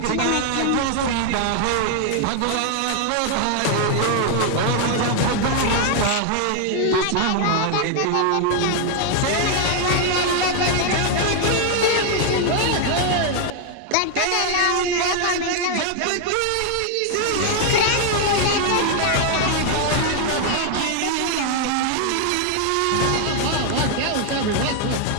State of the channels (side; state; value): both; different; correlation 0.00